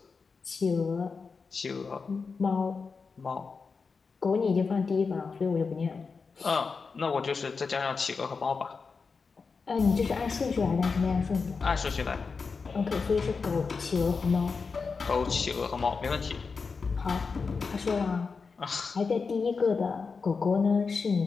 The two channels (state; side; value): quieter; right; 4.9 dB